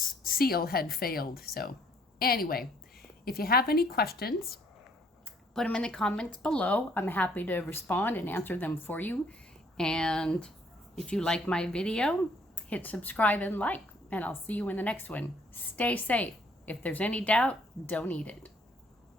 seal had failed. So anyway, if you have any questions, put them in the comments below. I'm happy to respond and answer them for you. And if you like my video, hit subscribe and like, and I'll see you in the next one. Stay safe. If there's any doubt, don't eat it.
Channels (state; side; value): normal; both; correlation 0.64